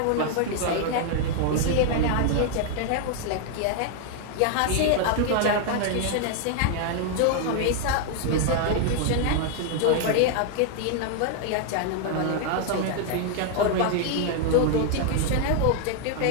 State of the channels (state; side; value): different; both; correlation 0.00